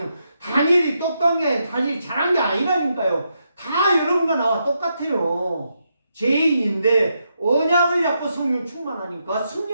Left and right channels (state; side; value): inverted; both; correlation -0.82